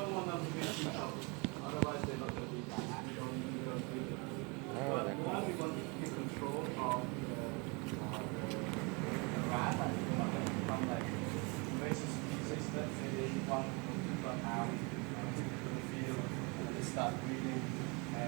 want them to be too close. Otherwise, they're not going to be that happy. You don't do it. But one, we want to keep control of the rat, from like invasive species. Let's say they want to run out to the field and they start breeding.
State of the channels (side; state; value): left; quieter; 30.2 dB